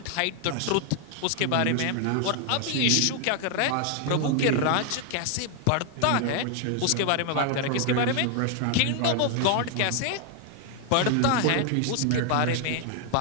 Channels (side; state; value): both; different; correlation 0.00